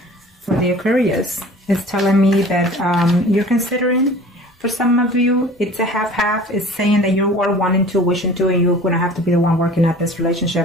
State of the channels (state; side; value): normal; both; correlation 0.45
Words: for the Aquarius, it's telling me that you're considering, for some of you, it's a half-half. It's saying that you are wanting to, wishing to, and you're going to have to be the one working at this